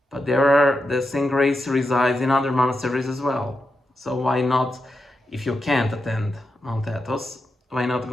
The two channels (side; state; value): both; normal; correlation 0.87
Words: but the same grace resides in other monasteries as well. So why not, if you can't attend Mount Athos, why not